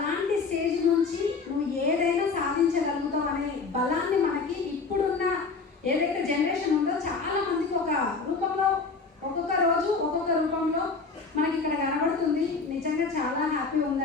స్టేజ్ నుంచి నువ్వు ఏదైనా సాధించగలుగుతావు అనే బలాన్ని మనకి ఇప్పుడున్న ఏదైతే జనరేషన్ ఉందో చాలా మందికి ఒక రూపంలో, ఒక్కొక్క రోజు ఒక్కొక్క రూపంలో హ్యాపీ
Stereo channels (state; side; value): quieter; right; 4.5 dB